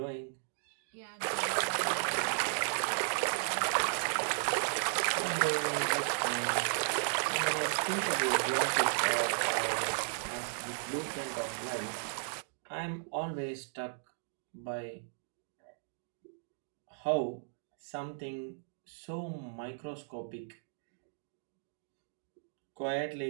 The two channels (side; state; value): left; silent; digital silence